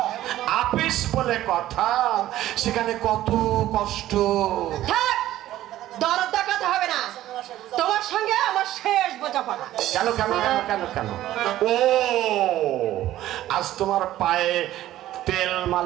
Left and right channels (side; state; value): left; quieter; 14.0 dB